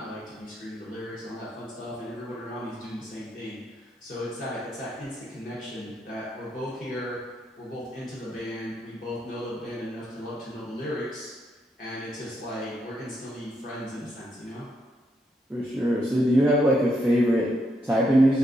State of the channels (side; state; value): both; normal; correlation 0.78